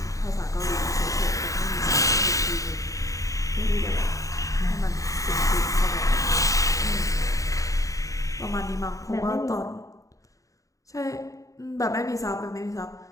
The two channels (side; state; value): right; late; 0.16 ms